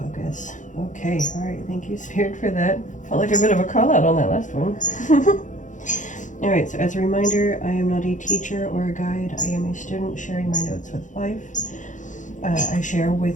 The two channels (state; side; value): late; right; 0.36 ms